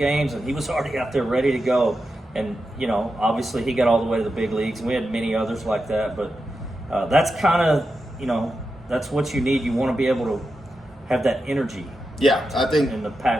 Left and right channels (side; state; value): both; normal; correlation 0.89